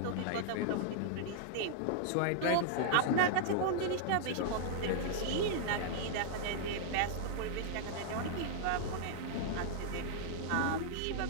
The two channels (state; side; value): different; both; correlation -0.01